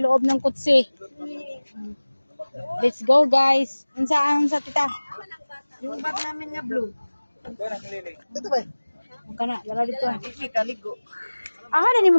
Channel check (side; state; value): both; inverted; correlation -1.00